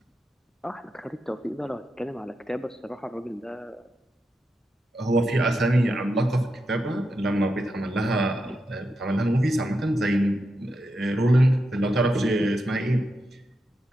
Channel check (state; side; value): normal; both; correlation 0.87